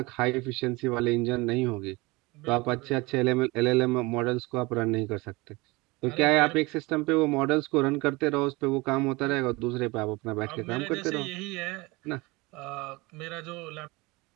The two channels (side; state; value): left; quieter; 23.8 dB